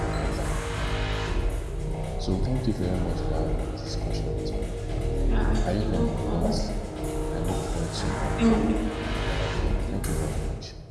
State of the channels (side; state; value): both; identical; correlation 1.00